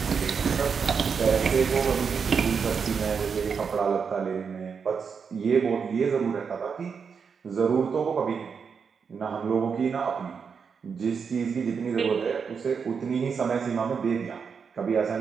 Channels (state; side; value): quieter; left; 6.1 dB